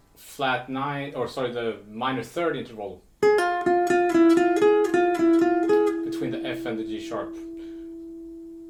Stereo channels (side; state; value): both; identical; correlation 1.00